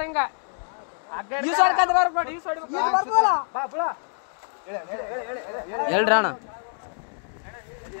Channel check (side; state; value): right; silent; 57 dB below the other